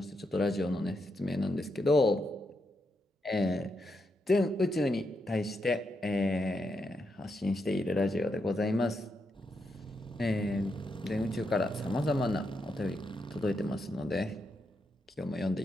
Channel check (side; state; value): both; normal; correlation 0.83